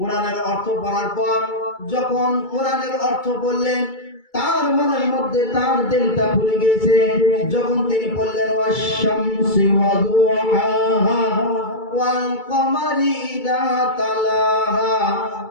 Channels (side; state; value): right; late; 2.3 ms